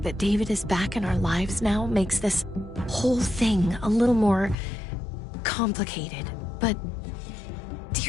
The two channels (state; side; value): drops out; right; at 4.5 s